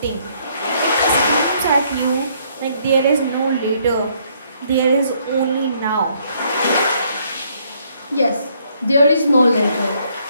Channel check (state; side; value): inverted; both; correlation -0.68